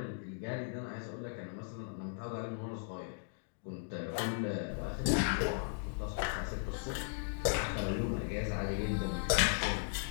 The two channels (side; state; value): right; silent; digital silence